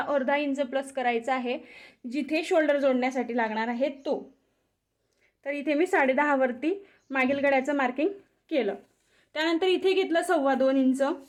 अर्धा इंच प्लस करायचा आहे जिथे शोल्डर जोडण्यासाठी लागणार आहे तो. तर इथे मी 10.5 वरती मागील गळ्याचं मार्किंग केलं. त्यानंतर इथे घेतलं 2.25 इंच.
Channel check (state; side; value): identical; both; correlation 1.00